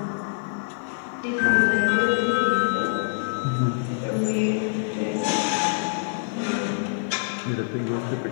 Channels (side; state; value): right; silent; digital silence